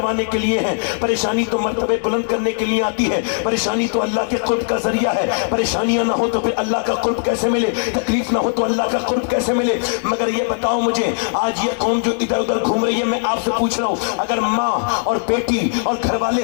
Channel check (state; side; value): silent; right; digital silence